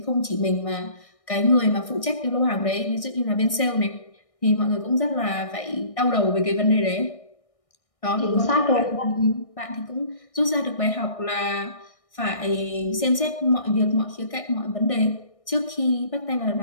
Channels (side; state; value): right; late; 1.6 ms